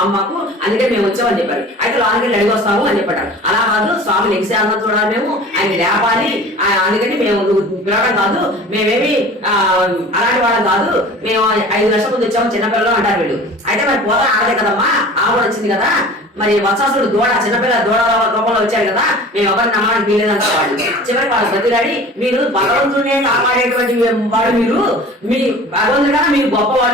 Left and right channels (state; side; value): normal; both; correlation 0.42